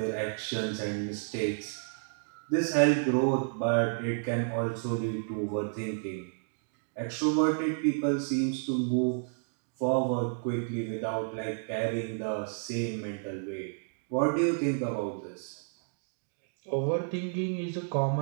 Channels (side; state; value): left; silent; digital silence